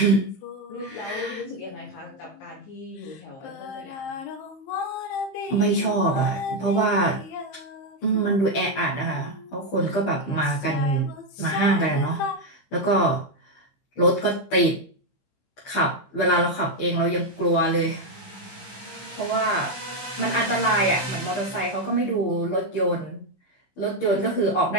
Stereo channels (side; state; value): right; late; 15 ms